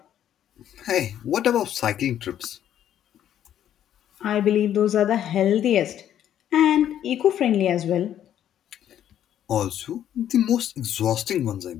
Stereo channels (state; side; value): quieter; right; 10.7 dB